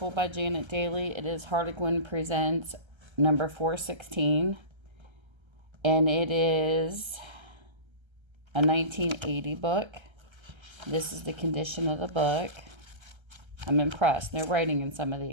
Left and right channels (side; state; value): left; late; 1.3 ms